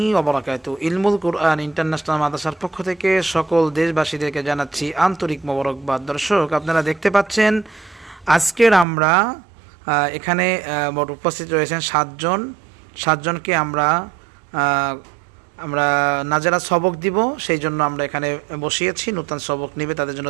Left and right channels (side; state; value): left; drops out; at 8.8 s